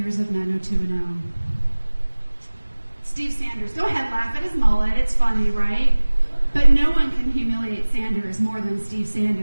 of 90210. Steve Sanders. Go ahead, laugh at his mullet. It's funny, right? But no one can humiliate Sanders more than Steve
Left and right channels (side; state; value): both; inverted; correlation -1.00